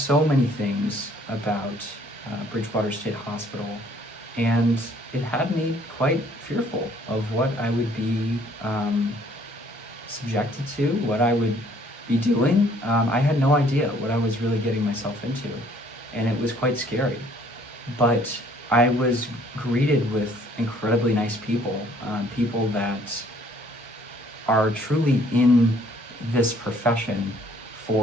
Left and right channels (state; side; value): normal; both; correlation 0.60